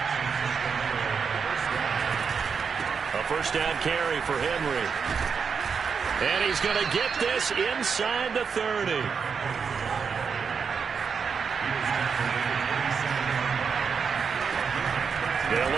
A first down carry for Henry. And he's going to get this inside the 30. They'll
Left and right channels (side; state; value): left; quieter; 6.0 dB